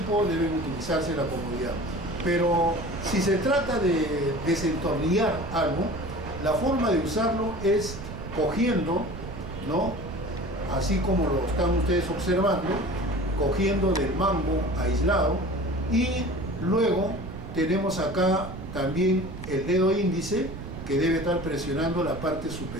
deben utilizarse la comodidad. Pero si se trata de desentornillar algo, la forma de usarlo es cogiendo, ¿no? Así como lo están ustedes observando, cogiendo del mango aislado, y luego tenemos acá también el dedo índice que debe estar presionando la parte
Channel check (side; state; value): right; noise; rumble, 10 dB below the sound